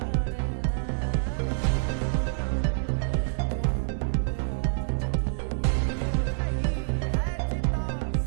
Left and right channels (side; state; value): left; silent; digital silence